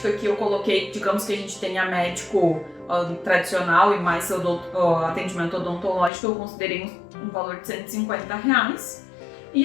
que eu coloquei, digamos que a gente tenha médico tradicional e mais atendimento odontológico, eu considerei um valor de R$150.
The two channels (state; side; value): drops out; right; at 6.1 s